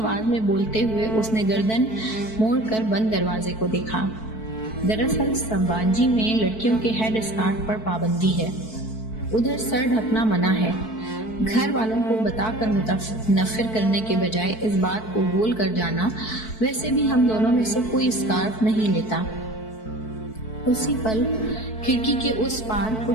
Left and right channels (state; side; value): late; right; 4.6 ms